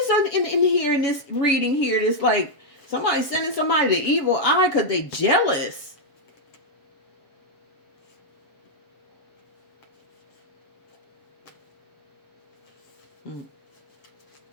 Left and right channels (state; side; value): late; right; 7.2 ms